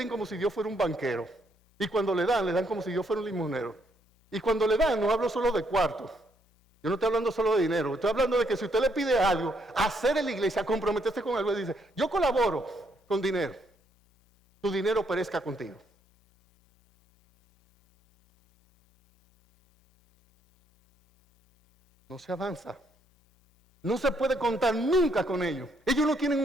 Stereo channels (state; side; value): normal; both; correlation 0.73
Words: como si Dios fuera un banquero. Y cuando le dan como si Dios fuera un limonero. Y cuando le dan, no hablo solo de cuartos. Yo no estoy hablando solo de dinero. Estoy hablando de que si usted le pide algo, hacer en la iglesia, comprometerse con algo, y dice, yo colaboro con dinero. Tu dinero perezca contigo. No se avanza. No se puede contar nunca con ellos. Ellos no tienen